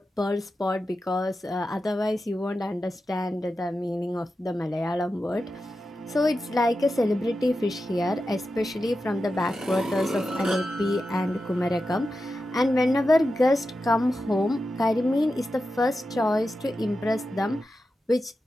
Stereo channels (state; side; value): normal; both; correlation 0.91